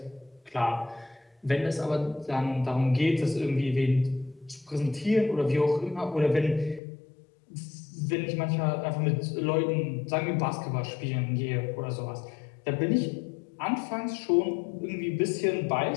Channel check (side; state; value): right; drops out; at 6.8 s